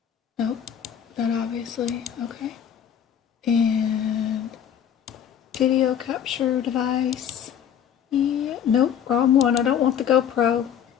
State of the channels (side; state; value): right; quieter; 8.8 dB